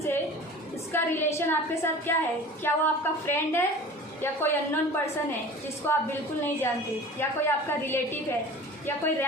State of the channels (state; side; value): normal; both; correlation 0.40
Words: से, उसका रिलेशन आपके साथ क्या है, क्या वो आपका फ्रेंड है या कोई अननोन पर्सन है जिसको आप बिल्कुल नहीं जानते, या कोई आपका रिलेटिव है या कोई